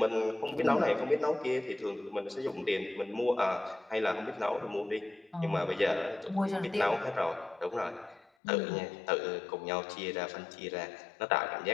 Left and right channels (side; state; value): right; drops out; at 8.3 s